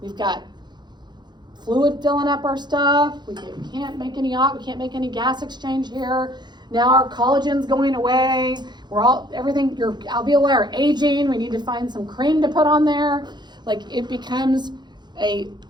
We've got fluid filling up our stuff. We can't make any gas exchange here. Now our collagen's going away. Everything, your alveoli are aging. We need to find some cream to put on there. Like it becomes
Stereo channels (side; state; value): left; late; 0.21 ms